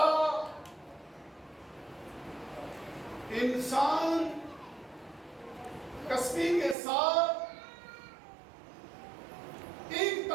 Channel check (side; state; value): left; drops out; at 6.8 s